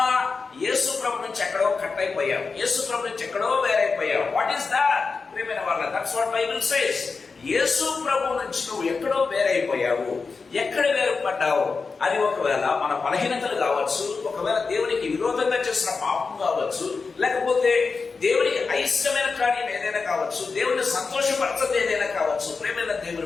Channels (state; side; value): quieter; right; 4.6 dB